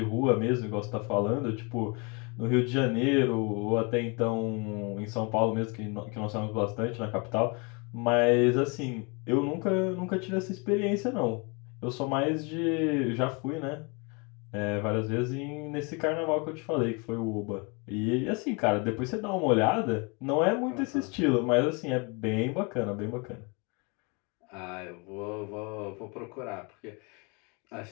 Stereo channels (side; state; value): right; quieter; 31.3 dB